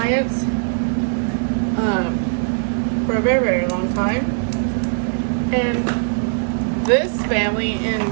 for a very, very long time. And this family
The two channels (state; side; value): silent; left; 66 dB below the other